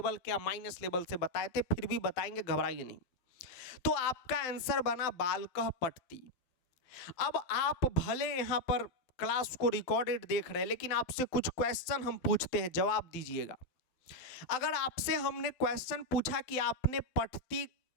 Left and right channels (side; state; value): right; late; 12 ms